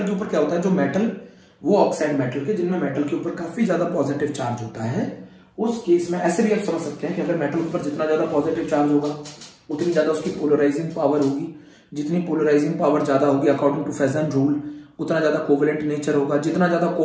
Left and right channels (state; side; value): identical; both; correlation 1.00